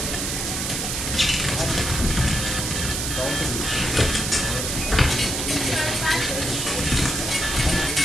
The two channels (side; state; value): right; noise; hiss, 2 dB below the sound